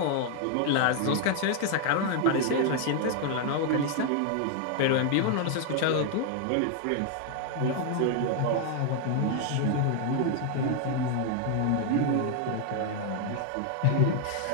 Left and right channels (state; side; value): different; both; correlation 0.00